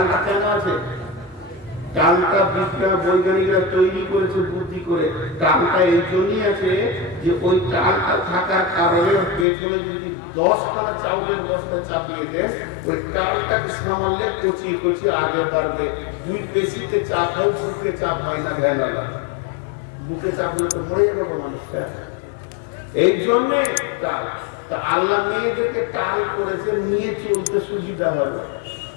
কেন আছে? টালটা বিজ্ঞান বৈজ্ঞানিকরা তৈরি করেছে বুদ্ধি করে। টালটা এই জন্যই আছে যে ওই টালটা থাকার কারণে পেছনে যদি 10খানা চাউলের বস্তা চাপিয়ে দেন, ওই টালটাকে সামালে কচিয়ে কচিয়ে আগে বাড়বে। দুই পেশিতে চাপ হয়, বুকে চাপ হয় না। ভ্যানালা বুকে চাপলে তো মরে যাবে মানুষটা। এই জন্যে টাল। তা আল্লাহ মেয়েদেরকে টাল করেছে নিয়ে চলতে সুবিধা হবে।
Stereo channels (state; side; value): drops out; right; at 9.5 s